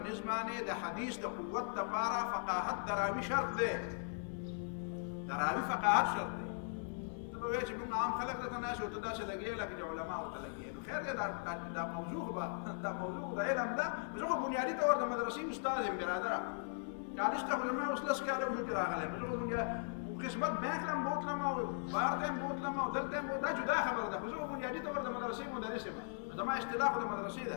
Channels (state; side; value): silent; right; 52 dB below the other